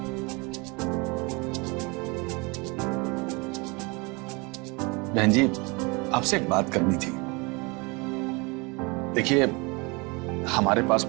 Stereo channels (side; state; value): left; quieter; 28.1 dB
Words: बहन जी, आपसे एक बात करनी थी। देखिए, हमारे पास